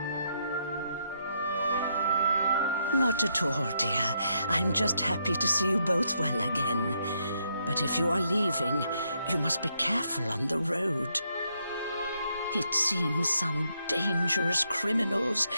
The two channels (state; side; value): inverted; both; correlation -0.77